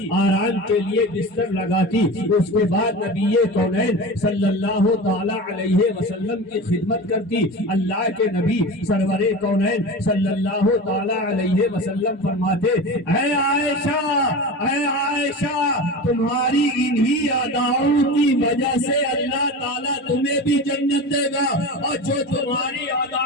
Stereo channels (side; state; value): both; normal; correlation 0.30